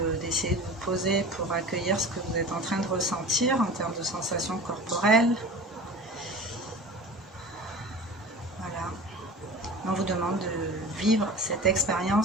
d'essayer de vous poser pour accueillir ce que vous êtes en train de ressentir en termes de sensations corporelles. Voilà. On vous demande de vivre cette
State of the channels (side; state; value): both; normal; correlation 0.36